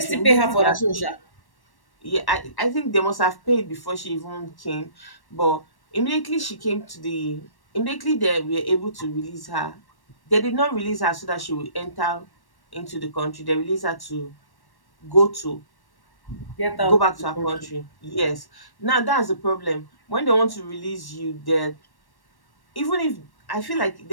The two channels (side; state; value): right; late; 1.1 ms